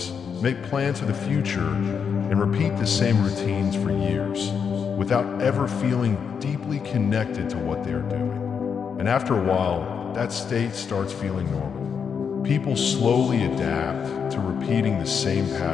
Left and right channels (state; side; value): quieter; right; 6.7 dB